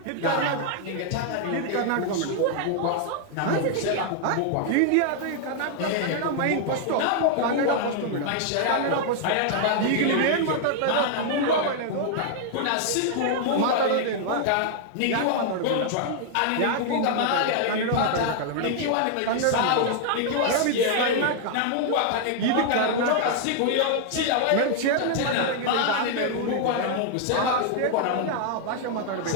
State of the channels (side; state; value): both; different; correlation 0.00